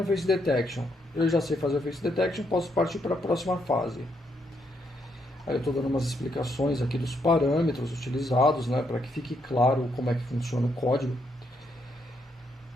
face detection. Eu já sei fazer o face detection, posso partir para a próxima fase. Aí eu estou dando umas explicações aqui dos parâmetros utilizados, né, para que fique claro como é que funciona o código.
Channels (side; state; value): both; normal; correlation 0.76